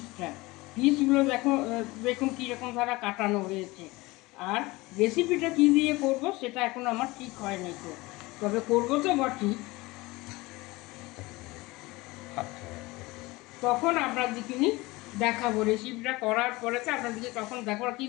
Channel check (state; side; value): quieter; right; 21.7 dB